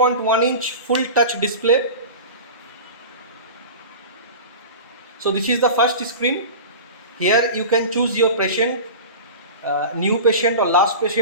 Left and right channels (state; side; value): inverted; both; correlation -0.32